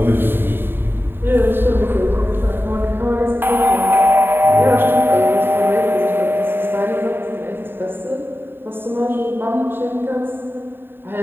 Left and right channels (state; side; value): late; left; 0.10 ms